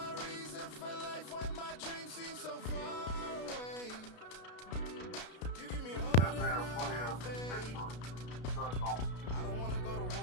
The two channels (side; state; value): right; late; 33 ms